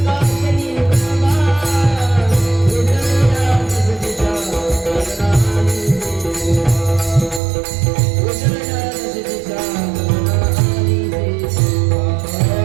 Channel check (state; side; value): drops out; left; at 7.4 s